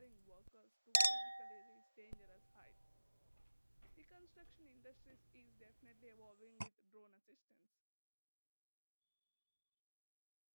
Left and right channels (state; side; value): inverted; both; correlation -1.00